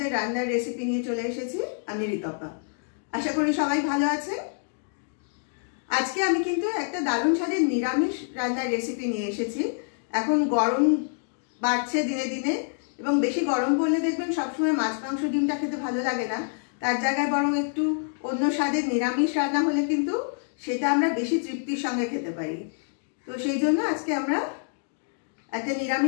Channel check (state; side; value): silent; right; digital silence